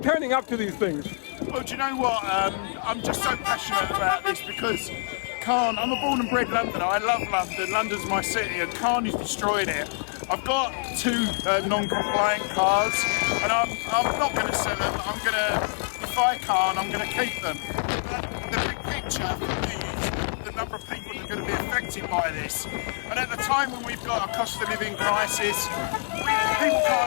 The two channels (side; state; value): right; silent; 61 dB below the other